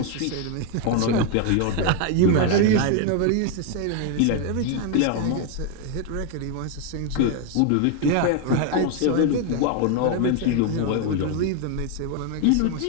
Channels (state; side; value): different; both; correlation 0.01